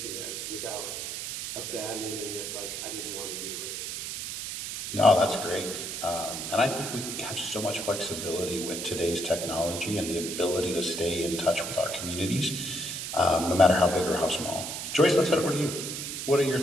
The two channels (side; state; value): right; noise; hiss, 5 dB below the sound